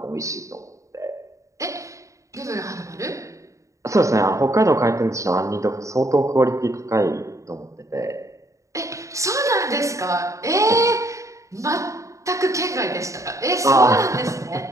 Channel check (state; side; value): late; left; 0.15 ms